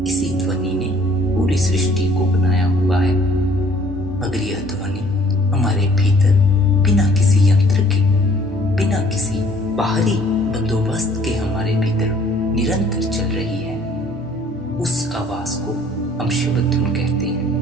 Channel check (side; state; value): both; normal; correlation 0.57